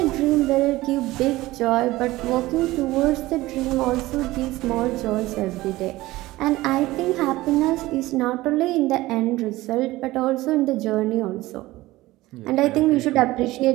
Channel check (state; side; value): quieter; left; 18.2 dB